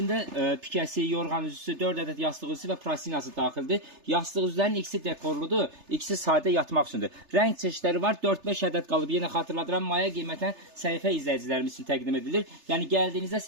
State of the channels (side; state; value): left; late; 3.3 ms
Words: pikəsi, yorğan üzüsü, 4 ədəd yastıq üzüsü və prasinası daxildir. Yastıq üzülərin ikisi dekorludur, ikisi sadə yatmaq üçündür. Rəng çeşidləri var, 4-5 ədəd qalıb. Yenə xatırladıram, maya qiymətən səhifə izləyicilərimiz üçün təqdim edilir. Yəni gəldiyinizdə